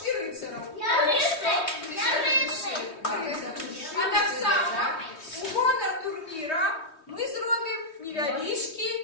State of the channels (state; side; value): late; right; 3.2 ms